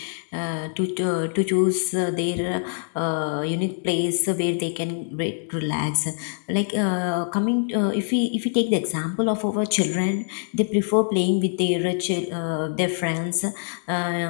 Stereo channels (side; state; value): right; silent; digital silence